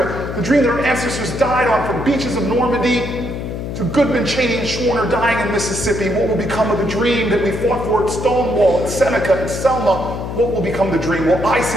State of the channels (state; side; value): noise; left; hum, 6 dB below the sound